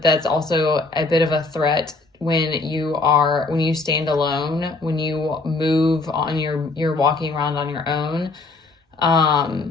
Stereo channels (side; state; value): right; quieter; 3.5 dB